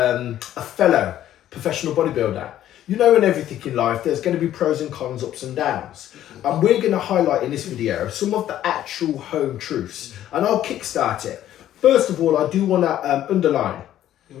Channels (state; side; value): quieter; right; 12.2 dB